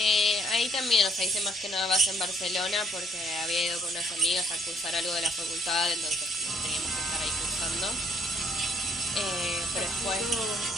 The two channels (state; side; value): normal; both; correlation 0.67